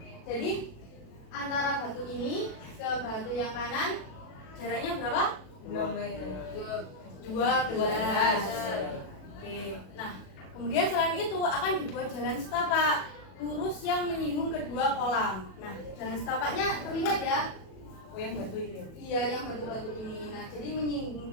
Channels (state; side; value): late; right; 37 ms